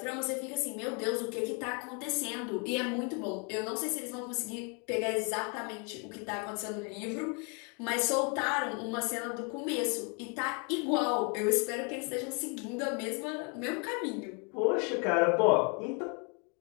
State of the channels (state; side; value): quieter; right; 34.8 dB